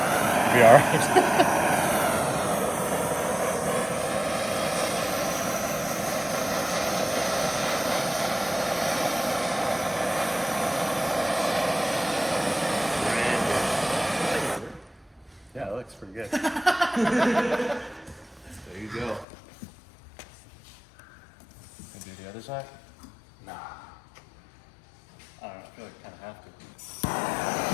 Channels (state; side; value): drops out; right; at 19.2 s